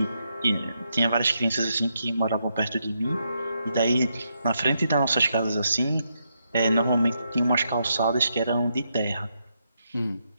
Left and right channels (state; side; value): inverted; both; correlation -0.80